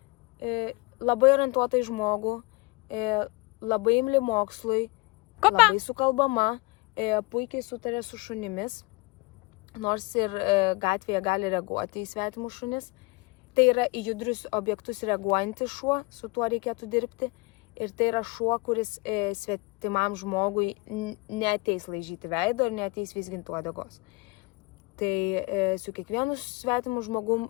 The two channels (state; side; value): quieter; right; 25.8 dB